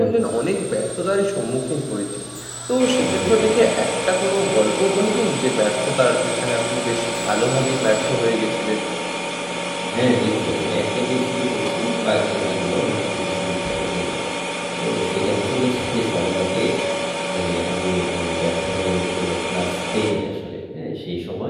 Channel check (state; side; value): identical; both; correlation 1.00